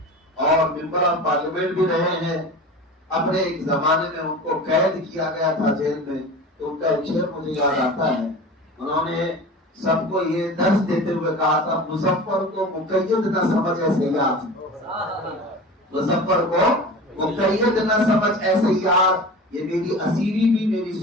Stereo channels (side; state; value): both; normal; correlation 0.34